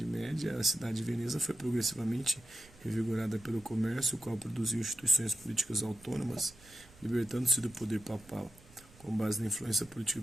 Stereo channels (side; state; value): right; noise; rumble, 24 dB below the sound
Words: Média, a cidade de Veneza foi progressivamente revigorada pelo comércio, o qual produziu instituições políticas autônomas, libertando-se do poder papal. Com base na influência política e